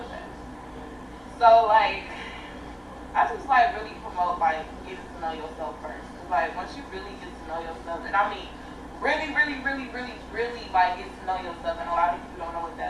of that. So like, I just like really promote like getting to know yourself first. Cause like once you really get to know yourself, and I mean really like get to know yourself, and a lot of people don't know what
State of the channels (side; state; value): both; identical; correlation 1.00